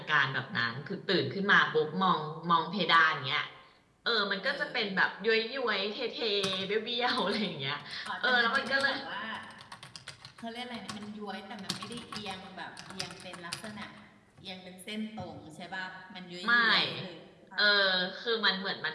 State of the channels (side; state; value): both; identical; correlation 1.00